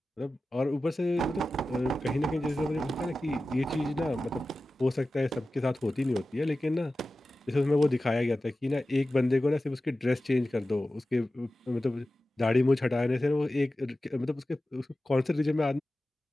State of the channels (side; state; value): both; normal; correlation 0.94